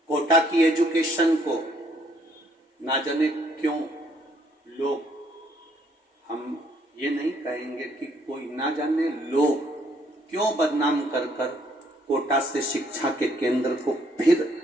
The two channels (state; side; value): normal; both; correlation 0.67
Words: कोटा की एजुकेशन को ना जाने क्यों लोग, हम ये नहीं कहेंगे कि कोई ना जाने लोग क्यों बदनाम कर कर कोटा से शिक्षा के केंद्र को फिर